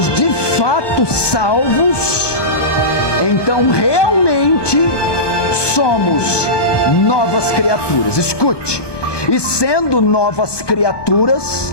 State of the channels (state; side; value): late; right; 1.2 ms